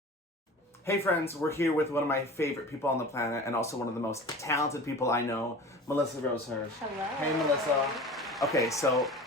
Hey friends, we're here with one of my favorite people on the planet and also one of the most talented people I know, Melissa Rosehurst. Hello. Hey Melissa. Okay, so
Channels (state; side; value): normal; both; correlation 0.37